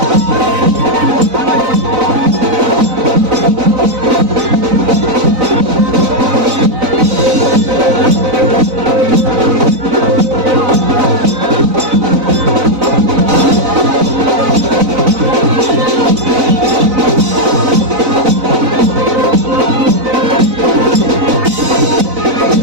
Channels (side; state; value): left; late; 4.0 ms